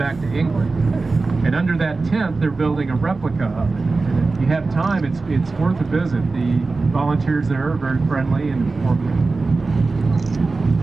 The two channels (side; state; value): left; quieter; 3.8 dB